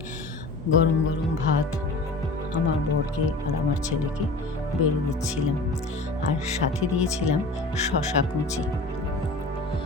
গরম গরম ভাত আমার বরকে আর আমার ছেলেকে বেড়ে দিচ্ছিলাম, আর সাথে দিয়েছিলাম শশা কুচি।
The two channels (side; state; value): right; quieter; 3.0 dB